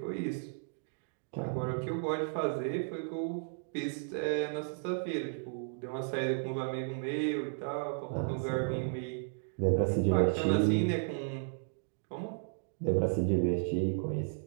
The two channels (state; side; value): silent; left; digital silence